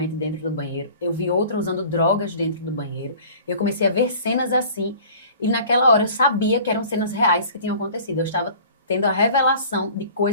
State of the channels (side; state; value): both; inverted; correlation -0.46